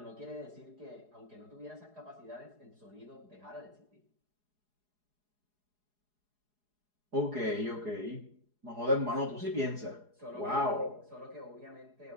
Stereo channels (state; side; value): late; left; 4.8 ms